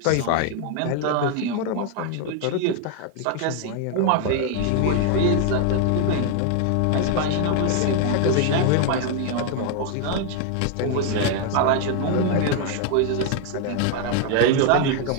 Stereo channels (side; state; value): both; different; correlation 0.01